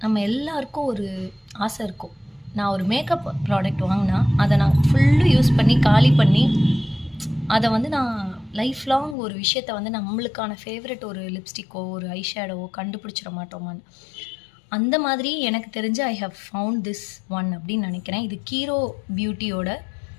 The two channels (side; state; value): right; drops out; at 9.2 s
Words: நம்ம எல்லாருக்கும் ஒரு ஆசை இருக்கும். நான் ஒரு மேக்கப் ப்ராடக்ட் வாங்குனா, அத நான் ஃபுல்லும் யூஸ் பண்ணி, காலி பண்ணி, அத வந்து நான் லைஃப் லாங் ஒரு விஷயத்த வந்து நம்மளுக்கான ஃபேவரைட் ஒரு லிப்ஸ்டிக்கோ, ஒரு ஐ ஷேடோவோ கண்டுபிடிச்சிட மாட்டோமான்னு. அந்த மாதிரி எனக்கு தெரிஞ்சு I have found this one அப்படின்னு நெனைக்கிறேன். இது கீரோ பியூட்டியோட